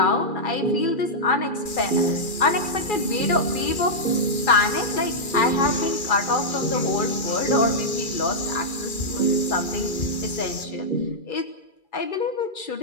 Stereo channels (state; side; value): late; right; 2.4 ms